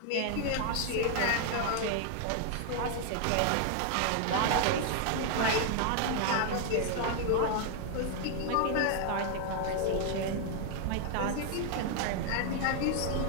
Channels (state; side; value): different; both; correlation 0.00